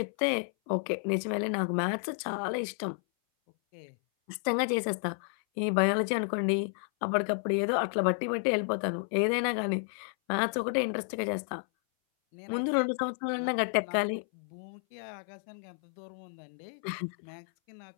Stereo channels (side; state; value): right; silent; 57 dB below the other